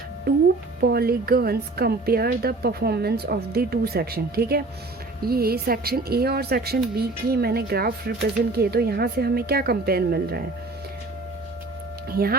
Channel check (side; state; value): left; quieter; 3.2 dB